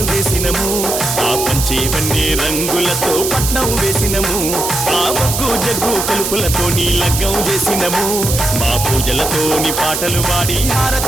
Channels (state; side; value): noise; right; hiss, 3 dB below the sound